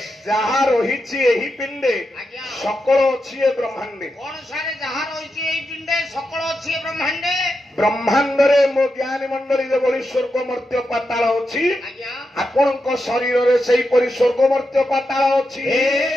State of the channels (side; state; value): both; normal; correlation 0.87